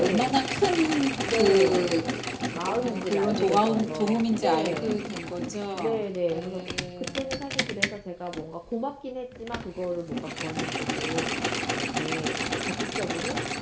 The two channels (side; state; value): both; identical; correlation 1.00